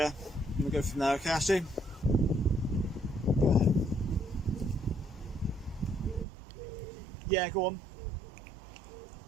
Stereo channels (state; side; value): drops out; left; at 6.2 s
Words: and we'll go from there, okay, Ashley? Go ahead. Yeah, go on.